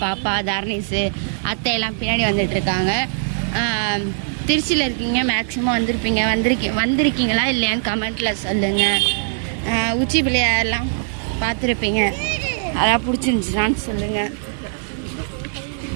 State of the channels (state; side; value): silent; left; digital silence